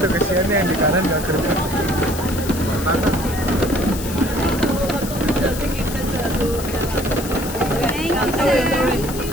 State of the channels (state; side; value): noise; left; hiss, 10 dB below the sound